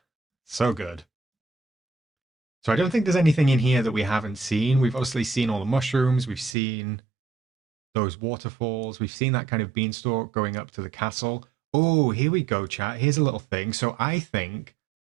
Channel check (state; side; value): drops out; left; at 6.6 s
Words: So good. So I don't think there's anything in here that we haven't seen. We've obviously seen all the mushrooms. We've seen those waterfalls. We've seen that kind of beanstalk going up to the castle. Oh, here we go, chat. Here's a little thing. So I think